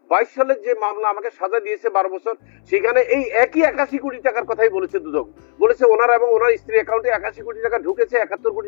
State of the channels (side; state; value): right; silent; 67 dB below the other